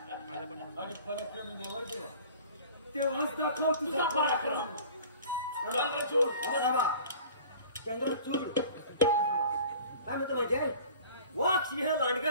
आणि पराक्रमी नवर तेव्हाच दाखव तुझा पराक्रम. चंद्रचूड चंद्रचूड काय म्हणतो माहिती आहे वाघ सिंह लांडगं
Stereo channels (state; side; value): inverted; both; correlation -0.44